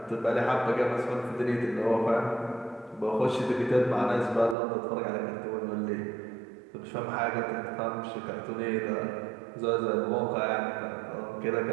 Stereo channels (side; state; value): left; drops out; at 4.5 s